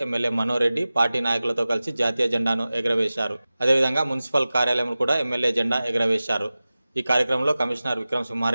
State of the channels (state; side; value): inverted; both; correlation -0.97